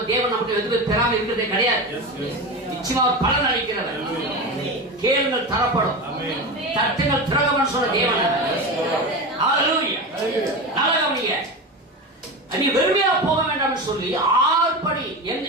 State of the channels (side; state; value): both; normal; correlation 0.23